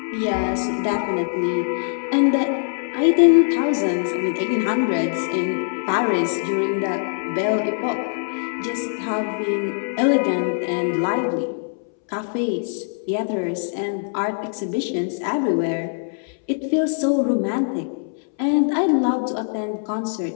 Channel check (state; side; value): silent; right; 64 dB below the other